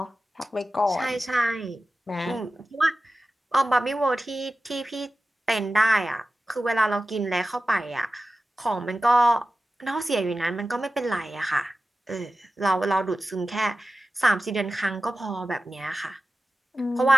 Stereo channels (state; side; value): normal; both; correlation 0.94